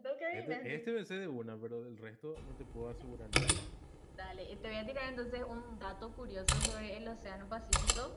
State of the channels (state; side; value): identical; both; correlation 1.00